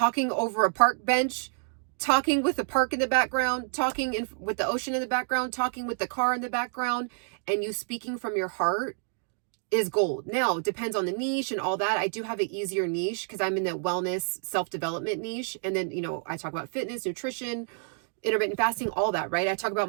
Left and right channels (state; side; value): silent; left; 59 dB below the other